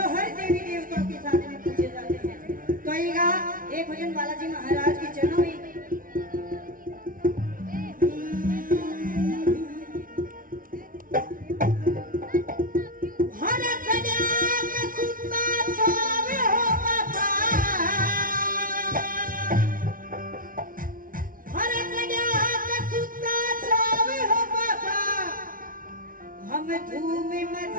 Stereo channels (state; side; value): late; left; 0.40 ms